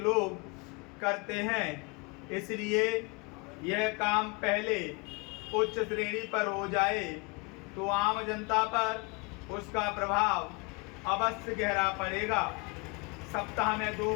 करते हैं। इसलिए यह काम पहले उच्च श्रेणी पर हो जाए तो आम जनता पर उसका प्रभाव अवश्य गहरा पड़ेगा। सप्ताह में 2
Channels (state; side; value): quieter; right; 28.4 dB